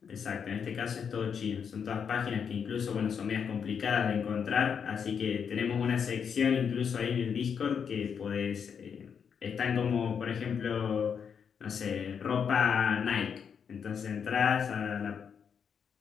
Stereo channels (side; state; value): right; quieter; 7.0 dB